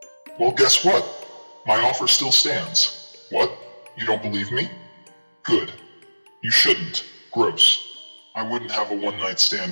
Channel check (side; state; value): both; inverted; correlation -1.00